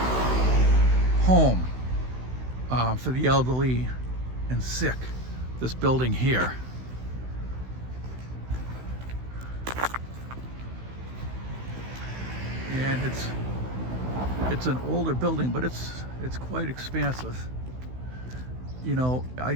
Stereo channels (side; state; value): left; late; 16 ms